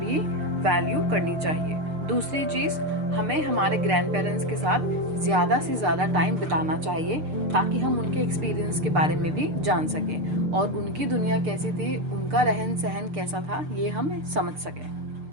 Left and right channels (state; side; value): late; left; 6.7 ms